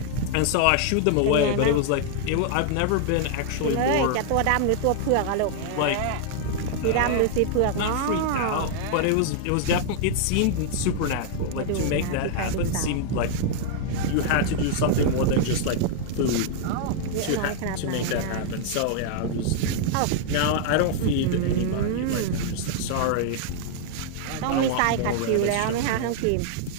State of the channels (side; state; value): both; different; correlation -0.01